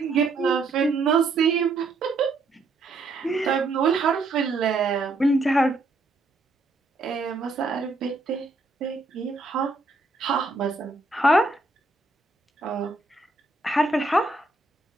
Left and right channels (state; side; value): quieter; left; 3.3 dB